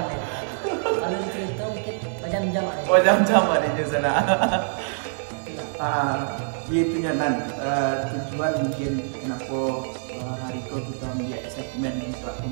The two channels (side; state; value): left; silent; digital silence